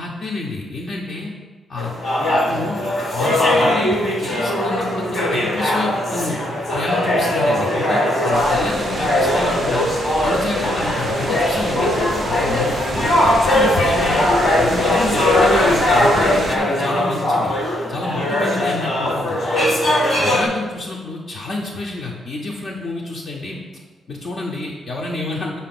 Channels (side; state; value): both; normal; correlation 0.73